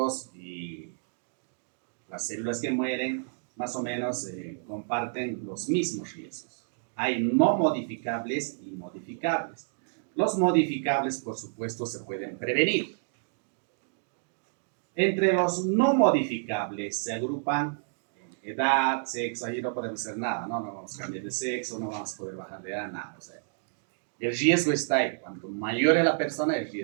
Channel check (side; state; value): left; silent; digital silence